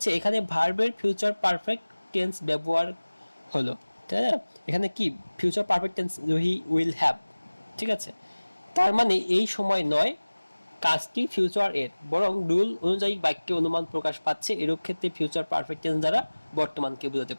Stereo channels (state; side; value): inverted; both; correlation -1.00